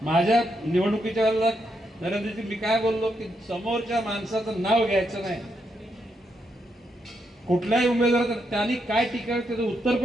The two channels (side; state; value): both; normal; correlation 0.80